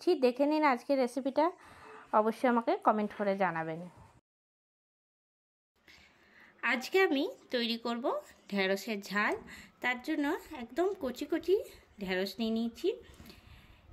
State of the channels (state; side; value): identical; both; correlation 1.00